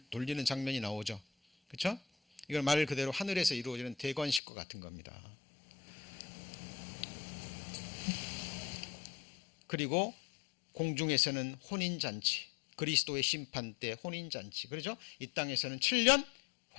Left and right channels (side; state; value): right; drops out; at 4.4 s